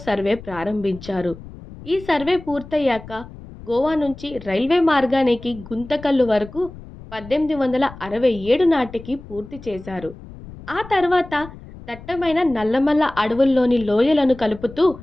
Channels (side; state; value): left; noise; rumble, 16 dB below the sound